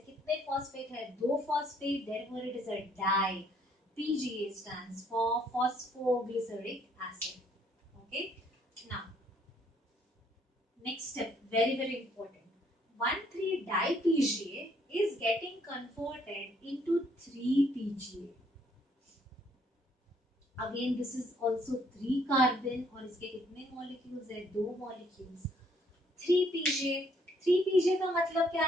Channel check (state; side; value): normal; both; correlation 0.66